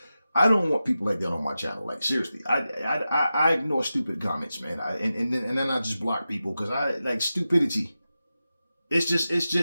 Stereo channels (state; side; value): inverted; both; correlation -0.93